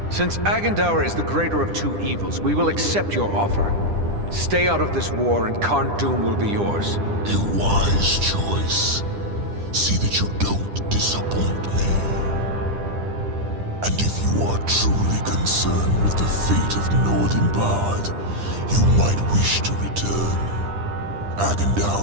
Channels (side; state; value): left; late; 10 ms